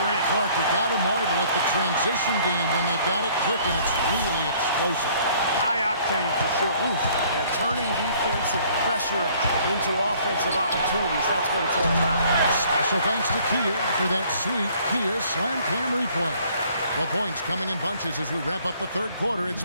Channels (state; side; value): inverted; both; correlation -0.58